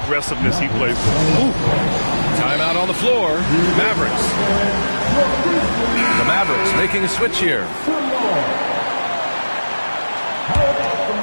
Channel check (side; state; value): both; inverted; correlation -1.00